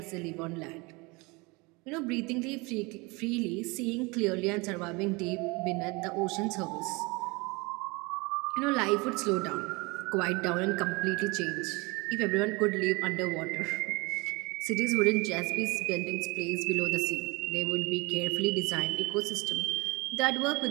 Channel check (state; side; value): quieter; left; 26.3 dB